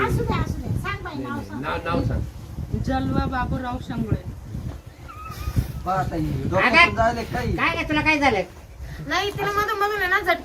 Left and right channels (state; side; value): identical; both; correlation 1.00